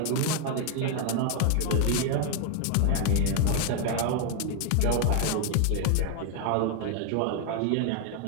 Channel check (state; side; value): different; both; correlation 0.00